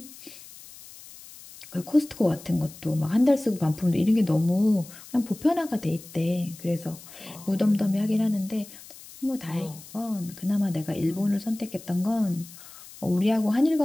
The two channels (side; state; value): left; noise; hiss, 18 dB below the sound